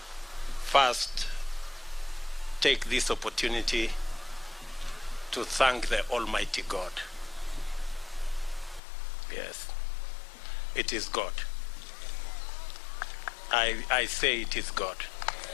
first take this opportunity to thank the Almighty God. Yes, it is God. I say it is God.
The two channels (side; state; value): right; drops out; at 8.8 s